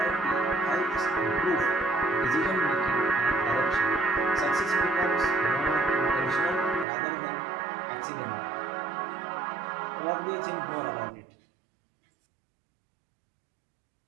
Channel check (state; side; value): drops out; left; at 6.9 s